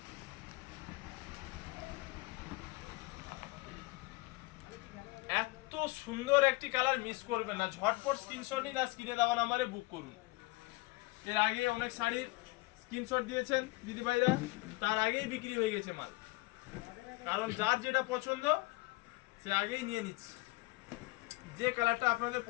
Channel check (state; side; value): quieter; right; 23.0 dB